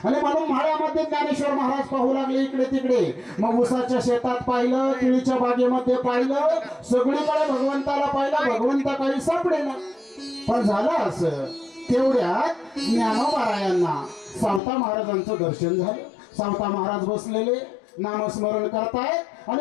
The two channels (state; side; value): drops out; right; at 14.6 s